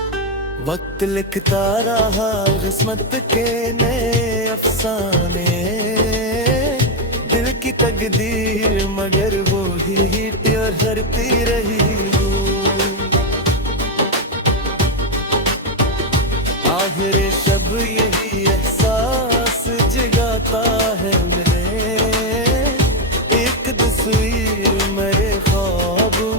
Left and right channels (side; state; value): both; normal; correlation 0.05